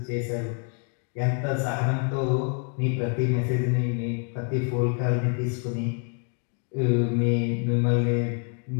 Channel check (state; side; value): quieter; right; 39.5 dB